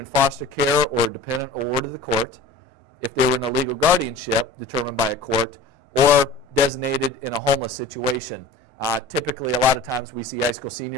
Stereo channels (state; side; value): quieter; right; 3.3 dB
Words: foster care or dependent or ward of the court, if they were in a legal guardianship determined by a court, or designated in a homeless situation Typically, a lot of times we see high school